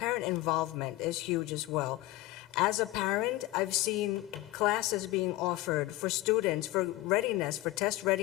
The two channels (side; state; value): right; quieter; 17.7 dB